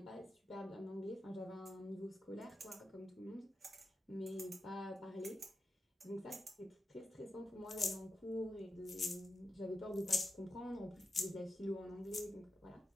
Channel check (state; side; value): normal; both; correlation 0.88